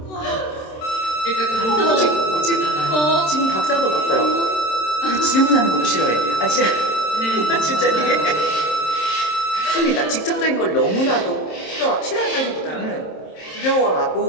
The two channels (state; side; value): late; right; 27 ms